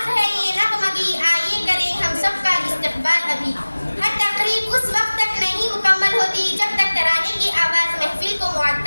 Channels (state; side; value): inverted; both; correlation -1.00